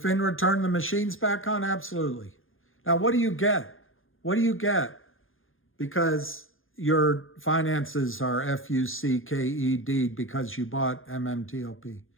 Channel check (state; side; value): late; right; 0.59 ms